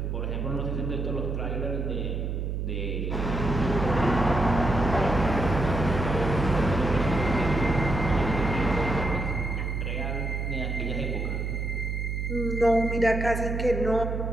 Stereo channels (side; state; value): right; noise; hum, 2 dB below the sound